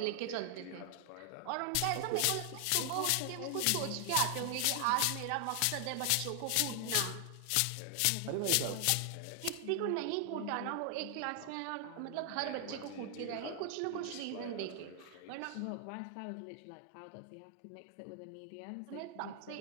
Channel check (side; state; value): both; different; correlation 0.00